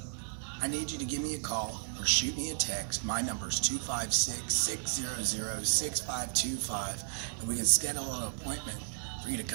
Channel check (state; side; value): silent; left; digital silence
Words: I need you to give me a call or shoot me a text. My number is 256-600-6525, and we can schedule an appointment for you to